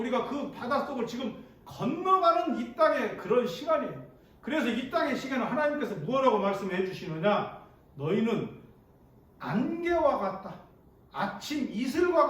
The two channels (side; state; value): both; identical; correlation 1.00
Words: 그 바닷속을 지금 건너가는 이 땅의 그런 시간이에요. 그래서 이 땅의 시간을 하나님께서 무엇라고 말씀해 주시느냐? 너희는 안개와 같다. 아침 이슬과